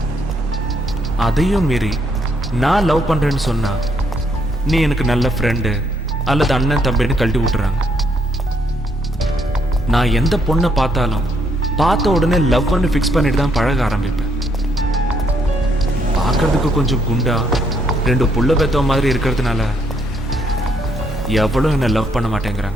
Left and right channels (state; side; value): normal; both; correlation 0.72